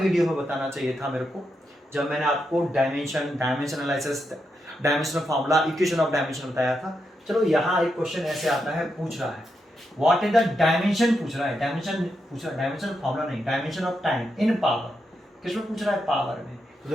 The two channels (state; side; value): normal; both; correlation 0.84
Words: में बताना चाहिए था मेरे को, जब मैंने आपको dimension analysis, dimensional formula, equation of dimension बताया था। चलो यहाँ एक क्वेश्चन ऐसे आता है, पूछ रहा है व्हाट इज द डायमेंशन, पूछ रहा है डायमेंशन फार्मूला नहीं, dimension of time in power, किसमें पूछ रहा है, पावर में। तो